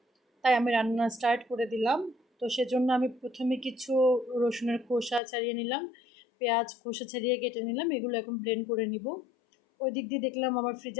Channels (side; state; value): right; drops out; at 5.2 s